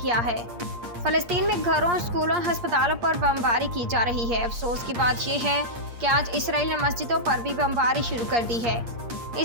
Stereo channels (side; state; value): left; late; 8.5 ms